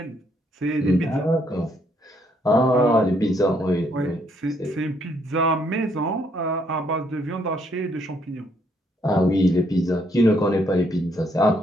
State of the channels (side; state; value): both; normal; correlation 0.71